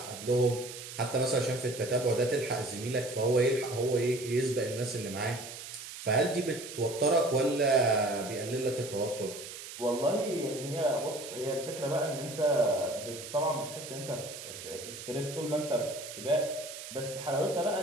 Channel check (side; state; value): right; noise; hiss, 11 dB below the sound